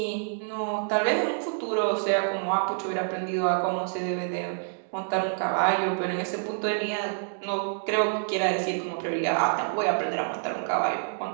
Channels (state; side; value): silent; left; digital silence